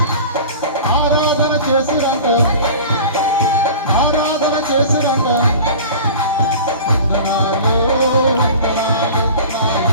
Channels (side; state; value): both; inverted; correlation -0.38